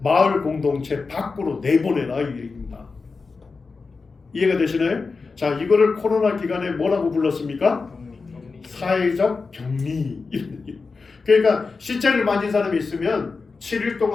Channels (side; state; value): right; quieter; 4.4 dB